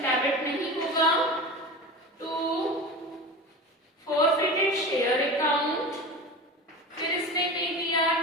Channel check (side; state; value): both; normal; correlation 0.30